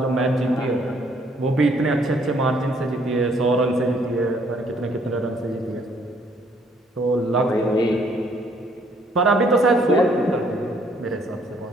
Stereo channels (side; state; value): both; normal; correlation 0.65